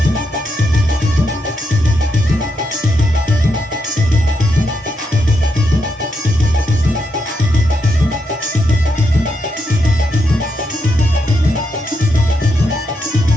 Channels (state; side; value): normal; both; correlation 0.81